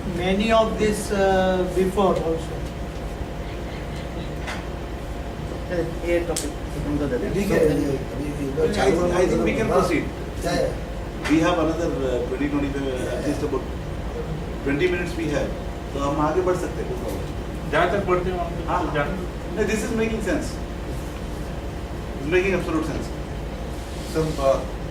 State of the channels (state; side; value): identical; both; correlation 1.00